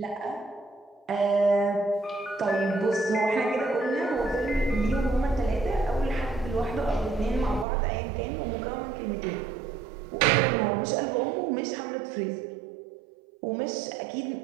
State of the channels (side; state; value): left; drops out; at 7.7 s